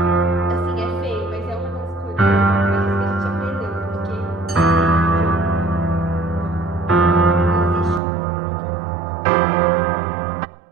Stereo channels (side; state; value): left; drops out; at 8.0 s